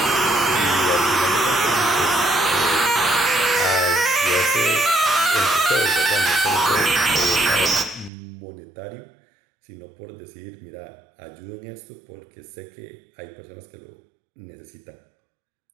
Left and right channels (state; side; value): drops out; left; at 8.1 s